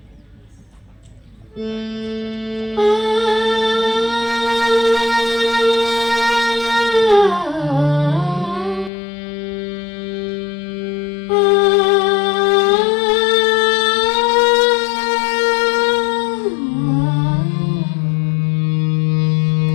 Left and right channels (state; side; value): drops out; right; at 8.9 s